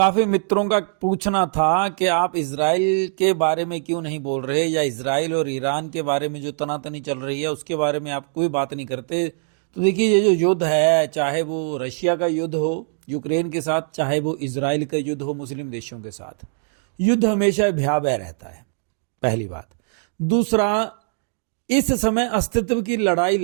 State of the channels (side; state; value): left; silent; digital silence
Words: मित्रों का पूछना था कि आप इजराइल के बारे में क्यों नहीं बोल रहे, या इजराइल और ईरान के बारे में जो तनातनी चल रही है उसके बारे में आप कोई बात नहीं करते। तो देखिए, ये जो युद्ध है, चाहे वो रशिया का युद्ध हो यूक्रेन के साथ, चाहे वो इजराइल का युद्ध हो मुस्लिम देशों के साथ, युद्ध हमेशा भयावह रहता है, पहली बात। दूसरा, इस समय अस्तित्व की लड़ाई